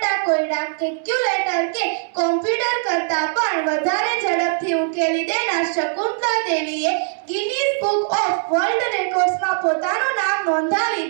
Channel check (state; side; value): silent; left; digital silence